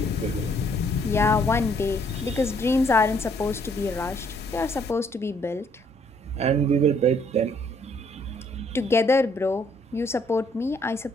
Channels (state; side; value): normal; both; correlation 0.66